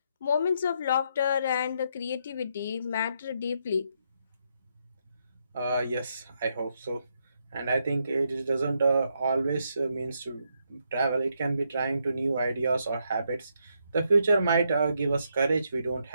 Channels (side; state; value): both; inverted; correlation -0.78